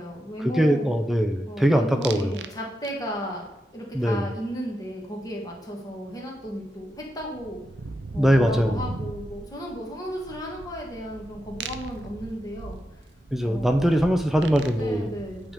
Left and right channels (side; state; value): both; normal; correlation 0.87